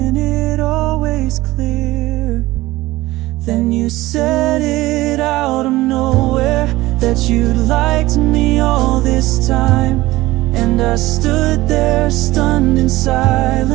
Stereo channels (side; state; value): left; quieter; 18.1 dB